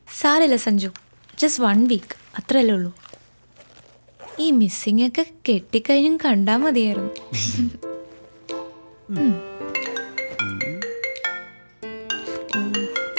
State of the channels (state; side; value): inverted; both; correlation -1.00